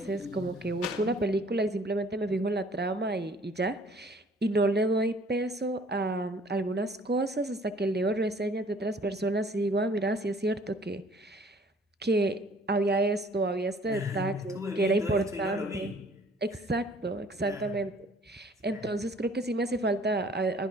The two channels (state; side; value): normal; both; correlation 0.56